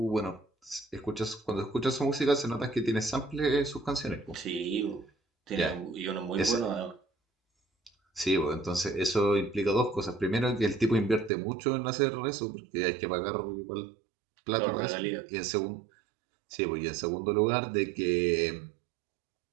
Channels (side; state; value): left; drops out; at 11.3 s